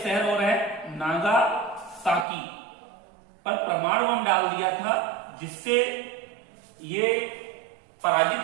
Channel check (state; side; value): drops out; left; at 2.2 s